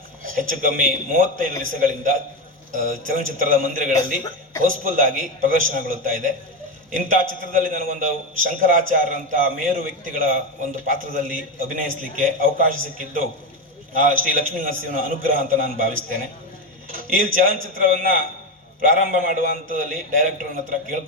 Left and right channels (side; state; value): both; normal; correlation 0.14